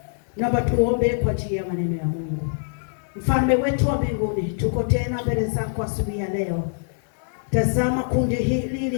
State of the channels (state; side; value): silent; right; digital silence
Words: Naomba tuombe kwa ajili ya maneno ya Mungu. Mfalme wetu wa mbinguni, tuko tena mbele zako asubuhi ya leo. Tazama kundi hili